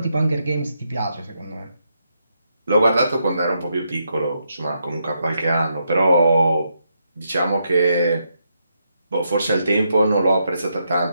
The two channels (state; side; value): inverted; both; correlation -0.80